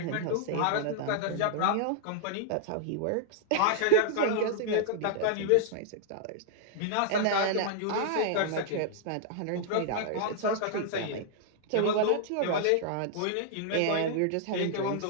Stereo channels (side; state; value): both; different; correlation -0.01